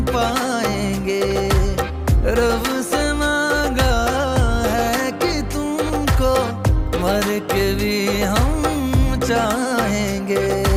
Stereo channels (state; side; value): identical; both; correlation 1.00